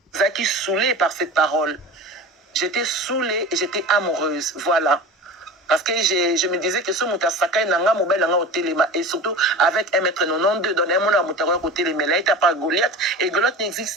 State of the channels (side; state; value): both; normal; correlation 0.33